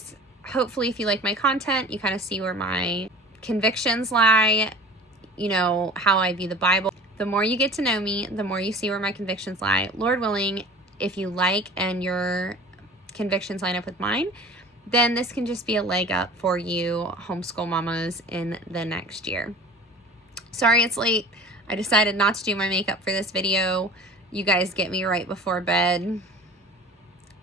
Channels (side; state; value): both; normal; correlation 0.42